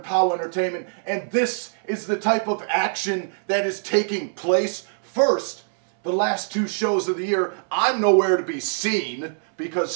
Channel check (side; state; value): left; silent; 63 dB below the other